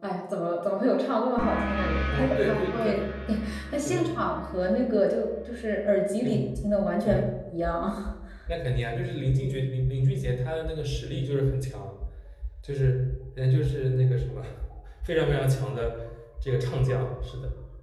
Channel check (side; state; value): both; identical; correlation 1.00